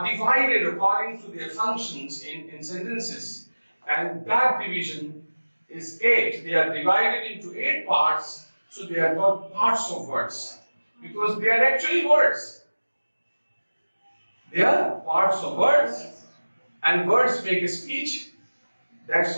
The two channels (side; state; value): both; inverted; correlation -1.00